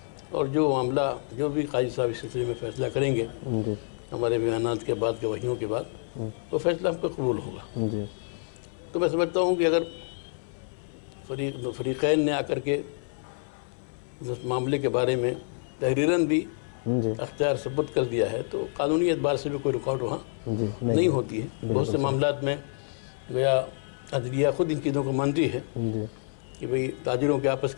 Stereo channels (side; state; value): right; silent; 59 dB below the other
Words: اور جو معاملہ جو بھی قاضی صاحب اس سلسلے میں فیصلہ کریں گے ہمارے بیانات کے بعد، گواہیوں کے بعد، وہ فیصلہ ہم پہ قبول ہوگا. تو میں سمجھتا ہوں کہ اگر فریقین نے آ کر کے اس معاملے کے بارے میں تحریراً بھی اختیار ثبت کر دیا ہے تو قانونی اعتبار سے بھی کوئی رکاوٹ وہاں نہیں ہوتی ہے. بہت سے معاملات میں گویا عدلیہ خود ان چیزوں کو مانتی ہے کہ بھئی تاجروں کے آپس